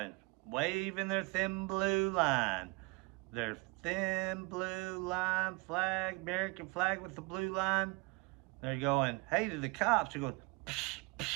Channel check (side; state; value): left; quieter; 27.7 dB